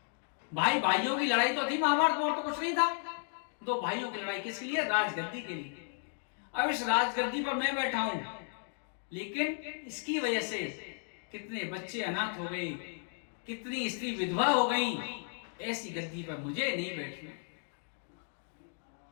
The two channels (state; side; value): silent; right; 55 dB below the other